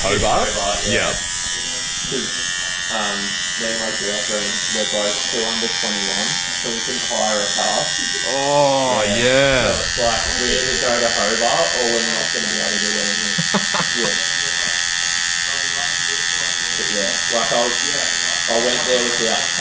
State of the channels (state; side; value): noise; left; rumble, 21 dB below the sound